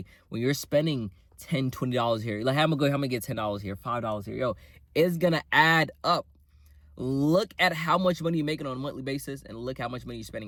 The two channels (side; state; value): both; identical; correlation 1.00